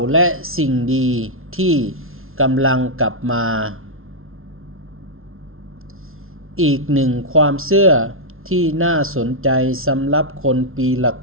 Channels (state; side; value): late; left; 0.61 ms